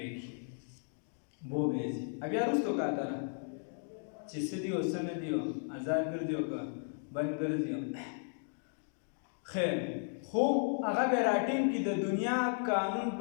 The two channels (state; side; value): silent; right; 54 dB below the other